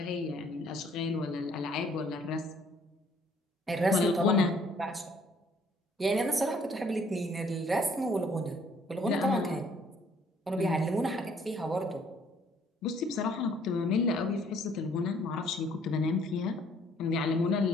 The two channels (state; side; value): normal; both; correlation 0.62